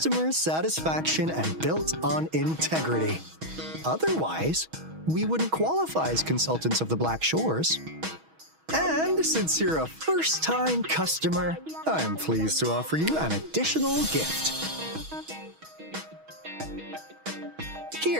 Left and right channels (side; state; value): left; late; 6.3 ms